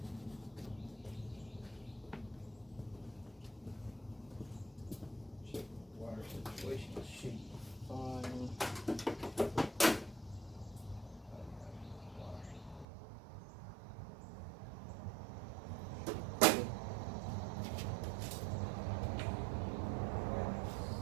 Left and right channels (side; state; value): left; drops out; at 12.9 s